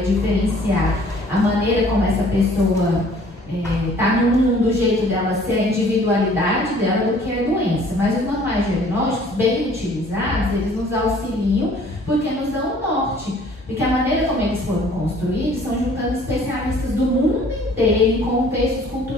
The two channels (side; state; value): both; normal; correlation 0.55